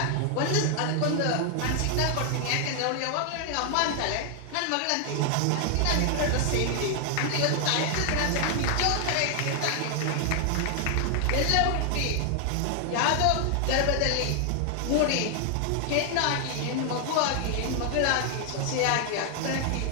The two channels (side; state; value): both; different; correlation 0.00